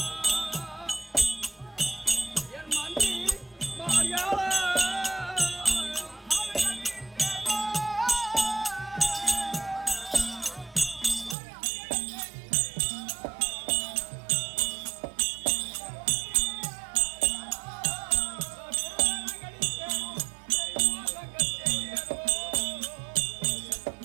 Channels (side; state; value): left; drops out; at 11.4 s